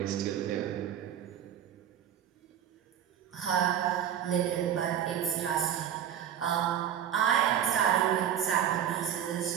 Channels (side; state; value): left; quieter; 9.6 dB